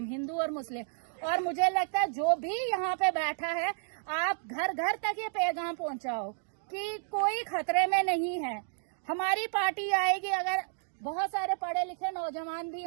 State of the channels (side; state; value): left; silent; digital silence